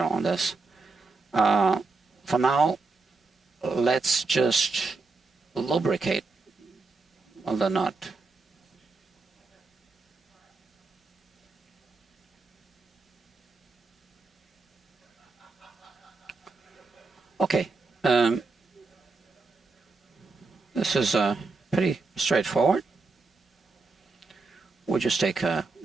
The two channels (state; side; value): quieter; left; 4.0 dB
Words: on this. For now, let's just lubricate the nut. Okay, this is pretty straightforward. We'll just take a